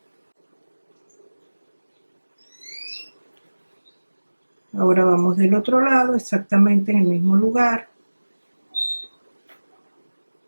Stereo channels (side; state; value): both; inverted; correlation -1.00